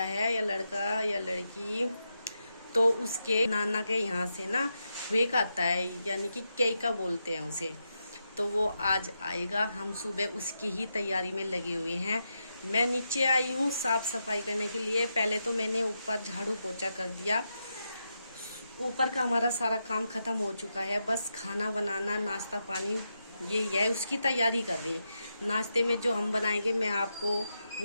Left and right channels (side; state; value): both; inverted; correlation -0.85